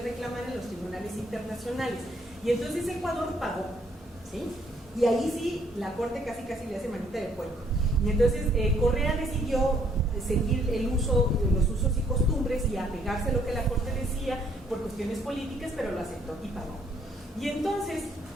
reclamar en los tribunales internacionales. Y entonces Ecuador pagó, ¿sí? Y ahí sí, la Corte casi le hace manita de puerco. Y entonces Correa decidió seguir los usos y costumbres y apegarse a lo que la Corte decía por cuestiones políticas, pero lo aceptó y pagó. Y entonces,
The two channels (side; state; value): both; normal; correlation 0.66